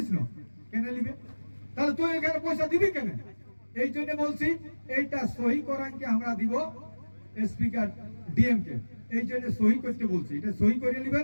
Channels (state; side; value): inverted; both; correlation -1.00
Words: না, কেনে নিবে? তাহলে তুই এখানে পয়সা দিবি কেন? এই জন্য বলছি এইটা সহি করাইকে আমরা দিব স্পিকার ডিএম কে, এই জন্য সহি করতে বলছি। এটা সহি করে